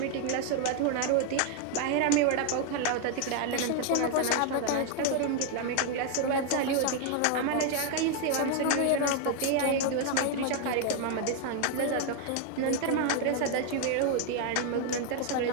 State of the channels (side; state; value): both; different; correlation 0.00